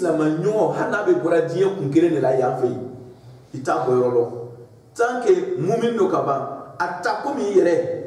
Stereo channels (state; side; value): identical; both; correlation 1.00